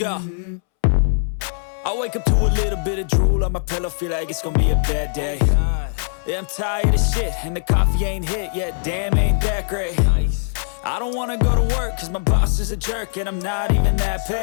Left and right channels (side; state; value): right; silent; 65 dB below the other